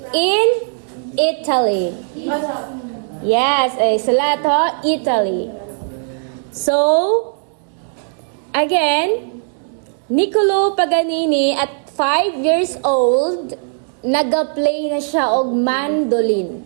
In Italy. Yes, sila to, Italy. So, again, Niccolo Paganini at 5 years old, nag-play na siya og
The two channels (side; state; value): left; silent; digital silence